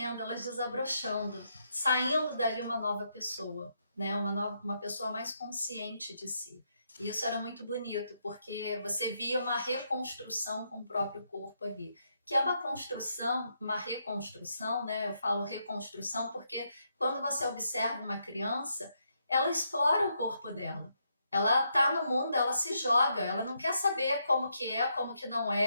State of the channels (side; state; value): both; inverted; correlation -0.78